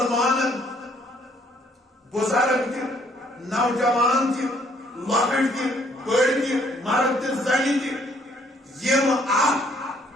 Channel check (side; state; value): both; normal; correlation 0.65